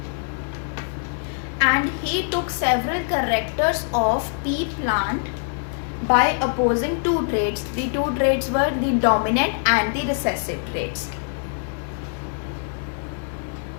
And he took several characters of pea plant by opposing two traits. The two traits were the dominant and the recessive traits.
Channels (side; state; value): right; silent; digital silence